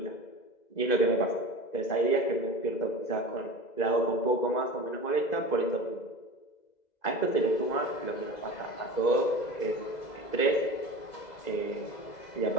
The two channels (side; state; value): right; late; 2.0 ms